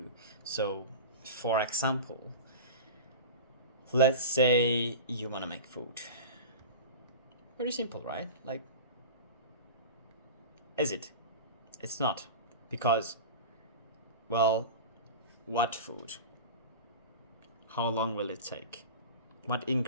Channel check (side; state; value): both; inverted; correlation -0.31